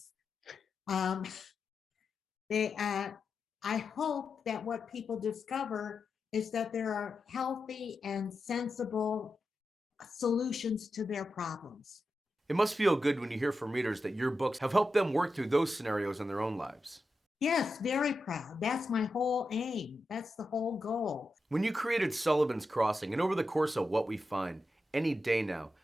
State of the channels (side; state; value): both; normal; correlation 0.89